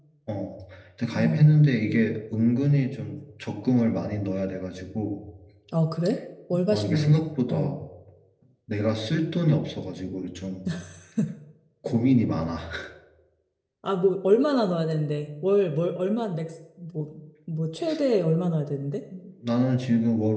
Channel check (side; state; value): both; identical; correlation 1.00